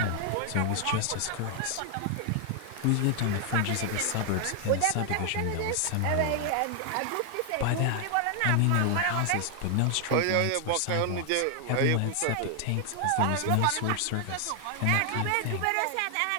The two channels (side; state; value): both; different; correlation 0.00